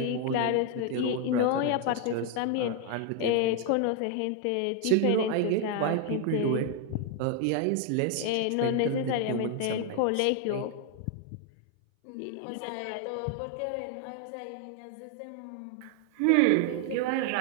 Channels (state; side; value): different; both; correlation 0.01